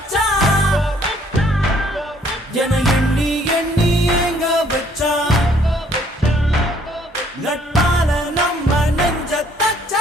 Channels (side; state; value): both; normal; correlation 0.63